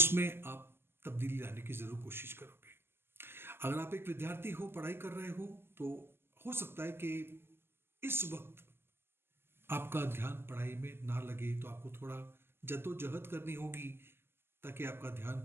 आप तब्दीली लाने की जरूर कोशिश करोगे। अगर आप एक विद्यार्थी हो, पढ़ाई कर रहे हो, तो हो सकता है कि इस वक्त आपका ध्यान पढ़ाई में ना लगे, तो आपको थोड़ा जद्दोजहद करनी होगी ताकि आपका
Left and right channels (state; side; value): late; left; 0.12 ms